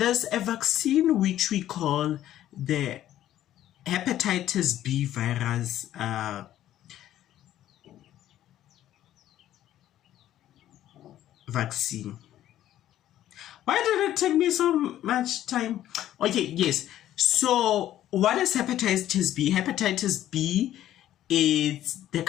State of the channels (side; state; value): right; quieter; 12.6 dB